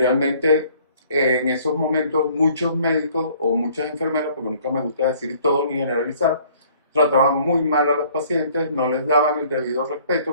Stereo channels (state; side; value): inverted; both; correlation -0.57